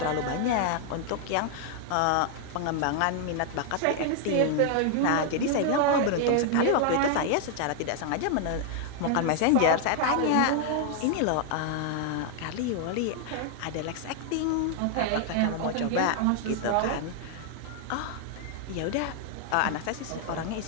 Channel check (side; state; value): both; different; correlation 0.00